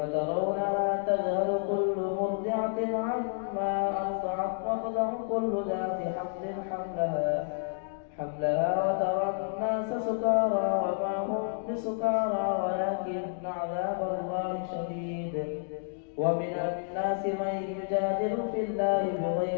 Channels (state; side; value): silent; right; digital silence